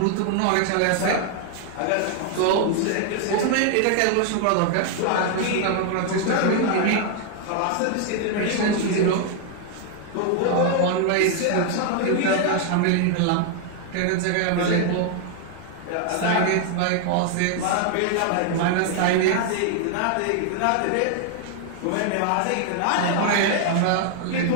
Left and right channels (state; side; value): different; both; correlation 0.00